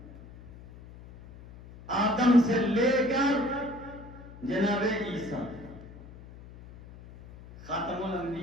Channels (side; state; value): left; noise; hum, 18 dB below the sound